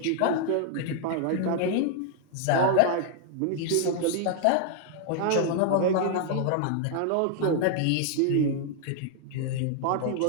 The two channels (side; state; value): both; different; correlation 0.00